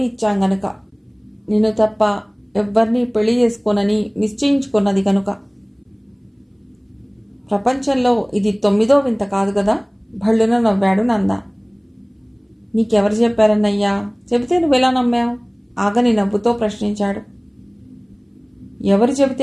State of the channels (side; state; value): both; identical; correlation 1.00